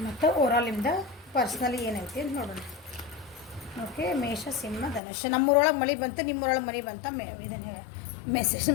ಮತ್ತು ಓವರಾಲ್ ನಿಮ್ದು ಪರ್ಸ್ನಲಿ ಏನೈತಿ ಅಂತ ನೋಡೋಣ. ಓಕೆ, ಮೇಷ ಸಿಂಹ ಧನುಷ್. ನಮ್ಮೂರೊಳಗೆ ಮಳೆ ಬಂತು, ನಿಮ್ಮೂರೊಳಗೆ ಮಳೆ ಬಂತ ಇದನ್ನು ಮೆಸೇಜ್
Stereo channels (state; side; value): drops out; right; at 5.0 s